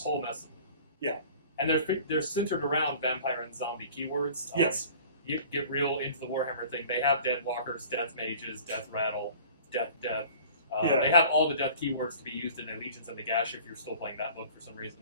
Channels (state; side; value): inverted; both; correlation -0.45